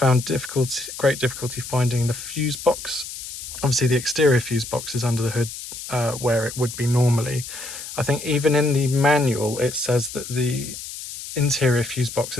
great difficulty finding the fuse box. Obviously the exterior fuse box is under the hood where it would be normally. I think even in the manual it says that the interior fuse box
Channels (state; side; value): noise; left; hiss, 10 dB below the sound